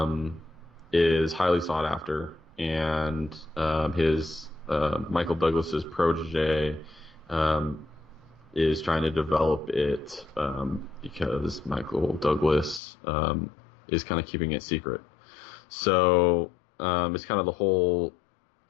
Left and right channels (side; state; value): right; drops out; at 12.8 s